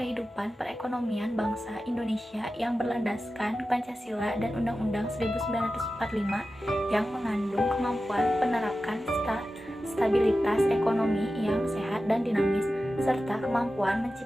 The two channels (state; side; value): normal; both; correlation 0.93